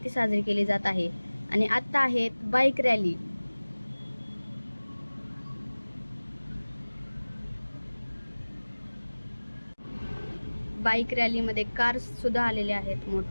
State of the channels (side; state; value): both; inverted; correlation -1.00